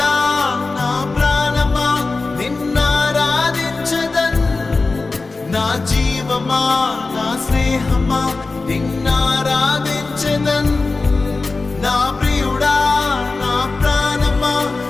నా ప్రాణమా నిన్నారాధించదన్, నా జీవమా నా స్నేహమా నిన్నారాధించదన్. నా ప్రియుడా నా ప్రాణమా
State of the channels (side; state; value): right; quieter; 3.7 dB